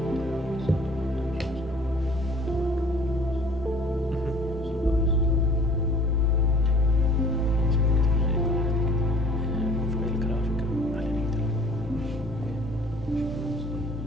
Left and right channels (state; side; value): normal; both; correlation 0.51